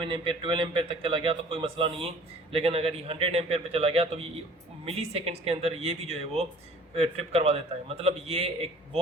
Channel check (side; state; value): both; normal; correlation 0.50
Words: एम्पेयर 12 एम्पेयर तक चला गया तो कोई मसला नहीं है। लेकिन अगर ये 100 एम्पेयर पे चला गया तो ये मिली सेकेंड्स के अंदर ये भी जो है वो ट्रिप करवा देता है। मतलब ये एक